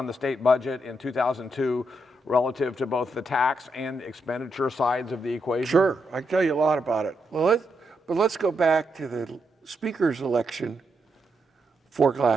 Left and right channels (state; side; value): normal; both; correlation 0.81